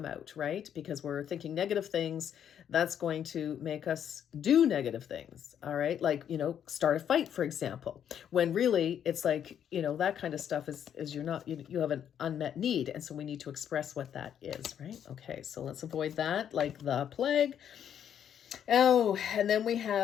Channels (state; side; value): quieter; right; 9.2 dB